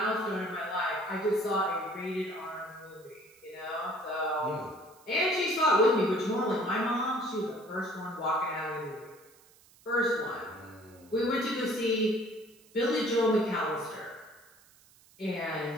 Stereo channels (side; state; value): right; noise; hiss, 27 dB below the sound